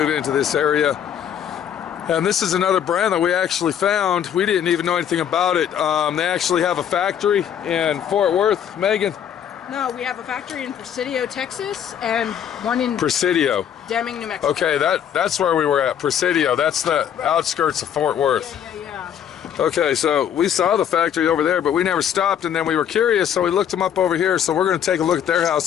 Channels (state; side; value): quieter; right; 9.2 dB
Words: into this area. And this is another brand that we actually found. We didn't even know anything about it. They actually have a factory in Fort Worth. Megan? No, we have a factory in Presidio, Texas, and one in Presidio, Deming, New Mexico. Okay, that's where we were at. Presidio. That's the outskirts of Fort Worth. Yeah. Okay, so we saw the factory over there, but we never stopped, and then we were curious, so we looked them up over here. So we're going to take a look at their